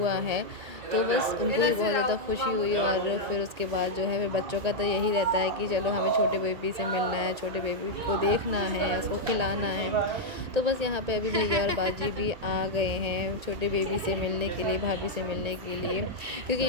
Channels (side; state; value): left; late; 1.8 ms